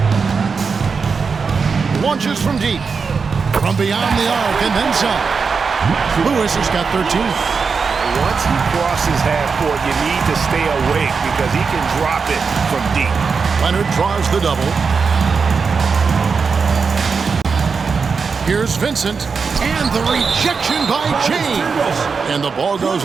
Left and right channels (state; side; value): quieter; left; 5.3 dB